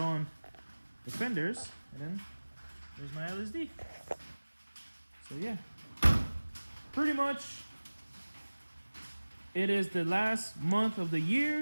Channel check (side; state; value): both; inverted; correlation -1.00